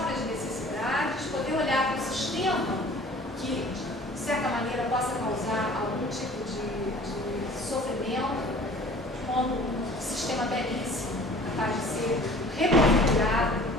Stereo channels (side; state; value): both; normal; correlation 0.48